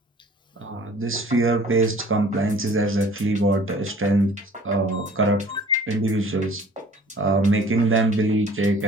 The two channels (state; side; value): normal; both; correlation 0.51